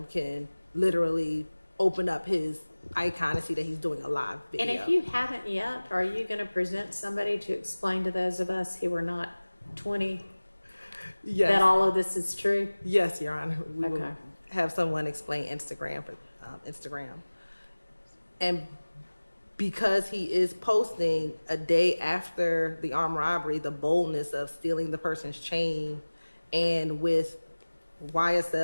can literally open up his icon and see that he's doing a live video. And if you haven't yet, are you going to present somebody to explain to those of us who are not 20 Yes. that all of this is true? Yes, Your Honor. We will Okay. have someone explain Instagram for Instagram. And because he is posting a day after the armed robbery, the boldness of stealing the person's chain and with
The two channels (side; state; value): both; inverted; correlation -1.00